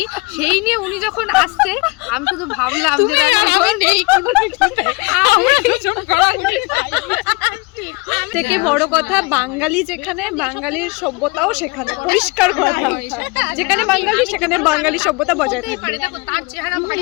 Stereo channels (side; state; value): right; quieter; 26.4 dB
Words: সেই নিয়ে উনি যখন আসছে আমি শুধু ভাবলাম যে থেকে বড় কথা, বাঙালি যেখানে, বাঙালির সভ্যতাও সেখানে, পরিষ্কার কথা, যেখানে বাঙালি সেখানে বাঙালি সভ্যতা বজায় থাকবে। দেখো তার চেহারা